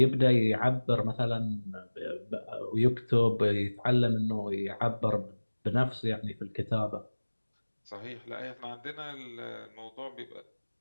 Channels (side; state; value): both; inverted; correlation -1.00